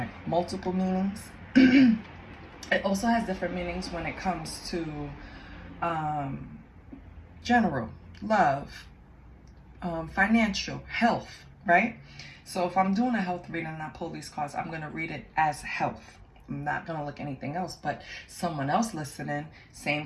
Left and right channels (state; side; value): identical; both; correlation 1.00